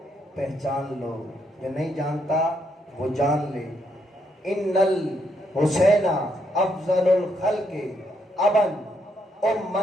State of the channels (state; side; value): normal; both; correlation 0.76